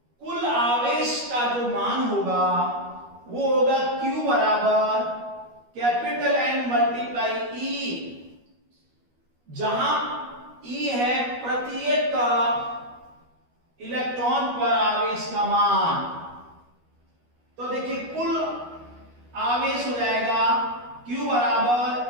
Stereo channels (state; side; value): late; left; 12 ms